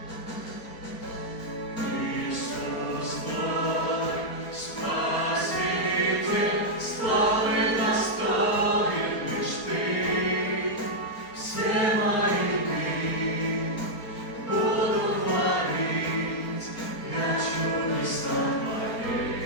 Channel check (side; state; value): right; late; 4.3 ms